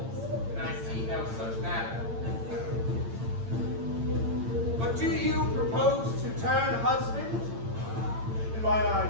and I see no such matter. But do you propose to turn husband? In mine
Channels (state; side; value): late; left; 8.8 ms